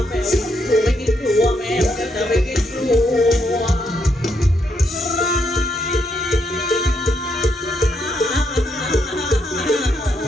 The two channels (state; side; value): normal; both; correlation 0.77